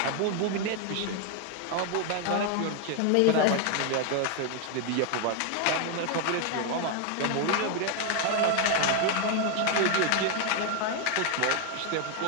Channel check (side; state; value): both; different; correlation 0.01